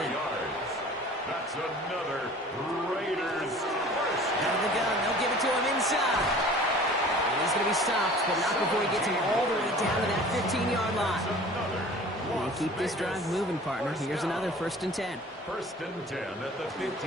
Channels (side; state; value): both; normal; correlation 0.45